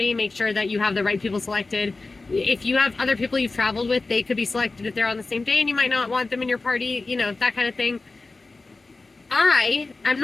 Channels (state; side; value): quieter; right; 3.6 dB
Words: Make sure that you have the right people selected. If you have other people you've traveled with, they could be selected if they're on the same day and you might not want them in your party, you know, that kind of thing. I am